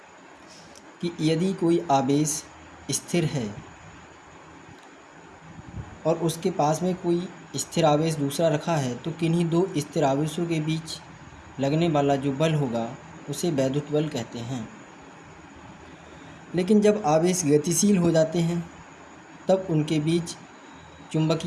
कि यदि कोई आवेश स्थिर है और उसके पास में कोई स्थिर आवेश दूसरा रखा है, तो किन्हीं दो स्थिर आवेशों के बीच लगने वाला जो बल होगा उसे वैद्युत बल कहते हैं। लेकिन जब आवेश गतिशील हो जाते हैं तब उनके बीच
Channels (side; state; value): both; identical; correlation 1.00